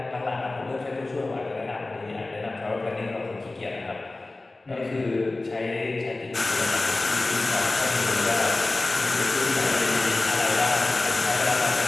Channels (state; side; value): quieter; right; 3.1 dB